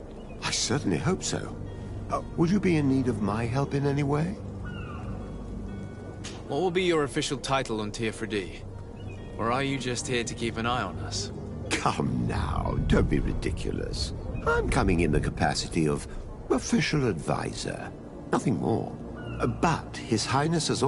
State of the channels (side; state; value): both; identical; correlation 1.00